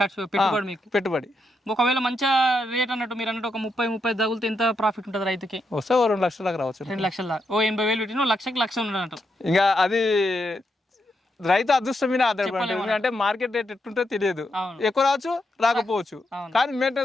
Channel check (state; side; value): normal; both; correlation 0.82